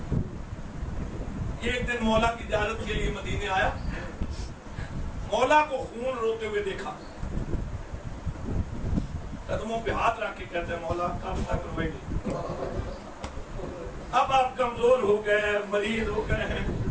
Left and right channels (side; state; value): both; identical; correlation 1.00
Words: ایک دن مولا کی زیارت کے لیے مدینے آیا. مولا کو خون روتے ہوئے دیکھا, قدموں پہ ہاتھ رکھ کے کہتے ہیں مولا کب تک روئیں گے؟ اب آپ کمزور ہو گئے ہیں, مریض ہو گئے ہیں,